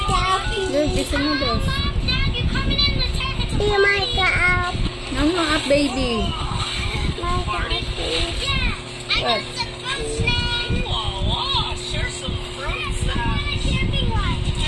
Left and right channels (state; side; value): identical; both; correlation 1.00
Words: Look, it's a noodles. No, no, up, baby. What?